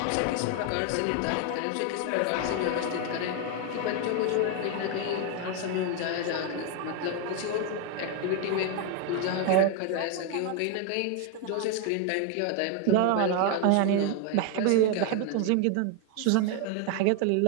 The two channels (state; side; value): different; both; correlation 0.01